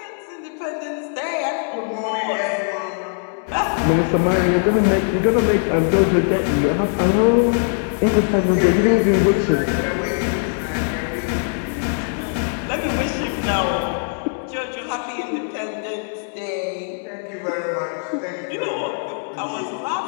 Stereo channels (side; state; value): right; silent; 65 dB below the other